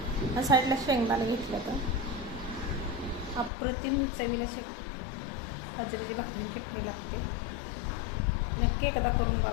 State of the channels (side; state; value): right; drops out; at 3.5 s